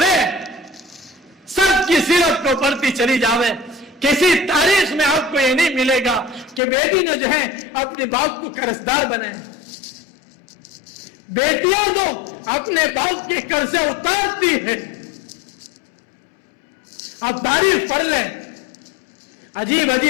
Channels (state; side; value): drops out; right; at 6.6 s